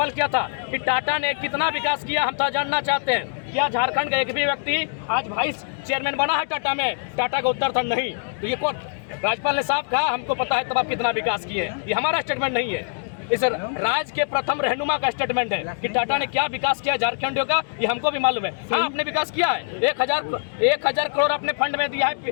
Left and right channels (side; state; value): right; silent; digital silence